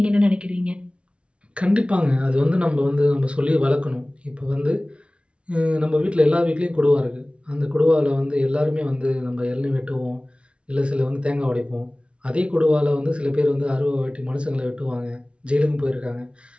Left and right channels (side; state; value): left; late; 0.059 ms